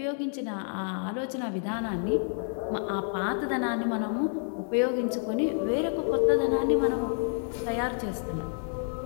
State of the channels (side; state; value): right; silent; 59 dB below the other